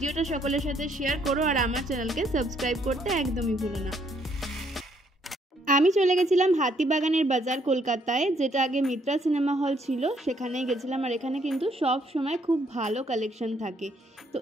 সকলের সাথে শেয়ার করো, আর আমার চ্যানেলকে সাবস্ক্রাইব করতে একদমই ভুলো না। আমি চলে গেছিলাম হাতিবাগানের বাজার কলকাতায়, যেটা আগে মিত্রা সিনেমা হল ছিল, সেখানেই গেছিলাম। আর এখানে কিন্তু সব সময় খুব ভালো কালেকশন থাকে। তো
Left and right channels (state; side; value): normal; both; correlation 0.69